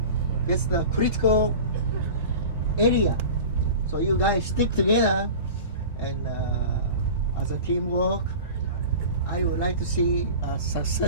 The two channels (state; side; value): inverted; both; correlation -0.36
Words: that's the critical area. So you guys stick together, and as a teamwork, I would like to see a